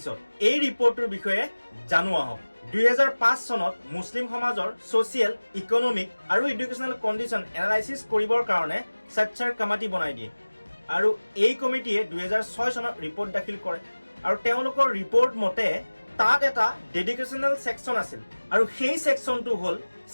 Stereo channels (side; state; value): both; inverted; correlation -1.00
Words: এই ৰিপৰ্টটোৰ বিষয়ে জানো আহক। 2005 চনত মুছলিম সমাজৰ ছ'চিয়েল, ইকনমিক আৰু এডুকেশ্যনেল কণ্ডিশ্যন এনালাইচিছ কৰিবৰ কাৰণে সচ্চাৰ কমিটি বনাই দিয়ে আৰু এই কমিটিয়ে 2006 চনত ৰিপৰ্ট দাখিল কৰে আৰু তেওঁলোকৰ ৰিপৰ্ট মতে তাত এটা ডেডিকেশ্যনেল ছেকশ্যন আছিল আৰু সেই ছেকশ্যনটো হ'ল